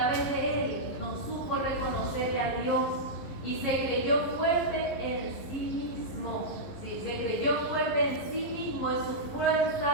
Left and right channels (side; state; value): right; late; 11 ms